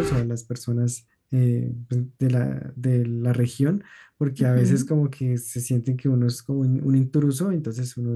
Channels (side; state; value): both; identical; correlation 1.00